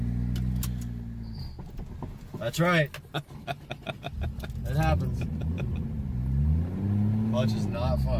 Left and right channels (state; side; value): identical; both; correlation 1.00